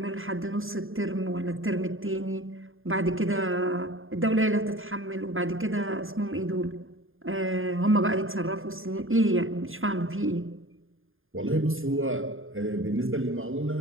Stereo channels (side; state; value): left; late; 0.59 ms